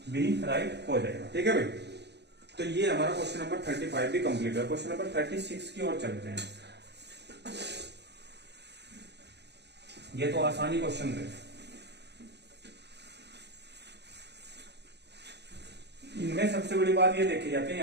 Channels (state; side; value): late; left; 0.50 ms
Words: बी राइट हो जाएगा, ठीक है भाई। तो ये हमारा क्वेश्चन नंबर 35 भी कंप्लीट है। क्वेश्चन नंबर 36 की ओर चलते हैं। ये तो आसानी क्वेश्चन थे, इनमें सबसे बड़ी बात ये देखी जाती है,